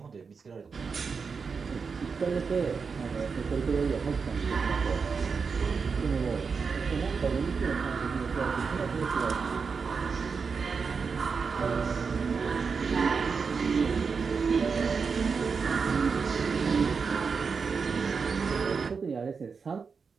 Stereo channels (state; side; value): quieter; left; 5.4 dB